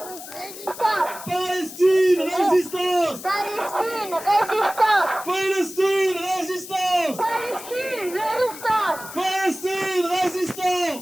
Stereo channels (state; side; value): noise; left; hiss, 13 dB below the sound